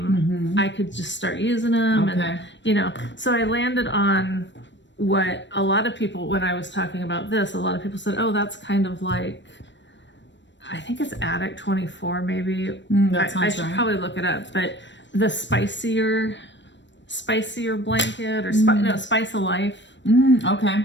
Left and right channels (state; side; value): late; right; 0.53 ms